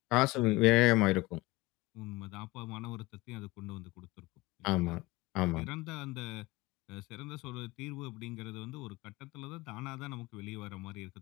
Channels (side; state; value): right; quieter; 20.9 dB